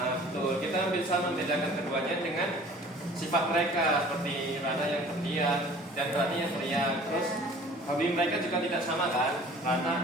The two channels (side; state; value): both; normal; correlation 0.48